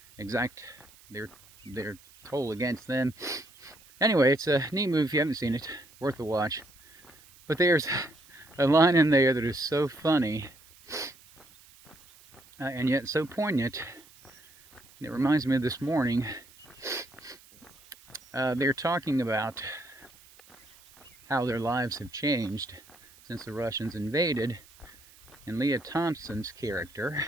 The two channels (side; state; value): right; noise; hiss, 25 dB below the sound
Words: exact their toll against them. Anyway, it's a neat movie. If you haven't seen it, worth a watch. But there's a line in there that is so funny and yet so poignant. It reminds me of this morning. They're talking about how their lives have changed since the Russians invaded. And Leah Thompson's character